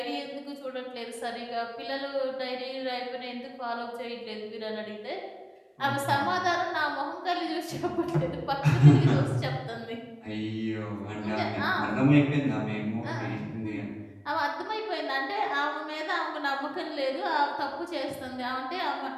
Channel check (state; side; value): identical; both; correlation 1.00